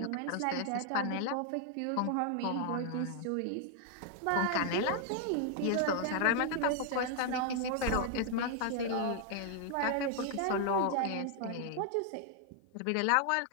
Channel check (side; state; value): both; different; correlation 0.00